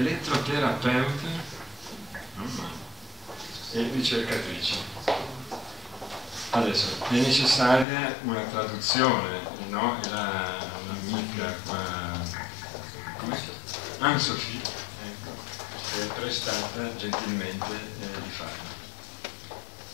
e ricercatrice. Adesso è necessaria una traduzione, no? È un'amica qua, Anne-Sophie, ecco, che è prestata gentilmente di farlo.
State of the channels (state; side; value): drops out; right; at 7.9 s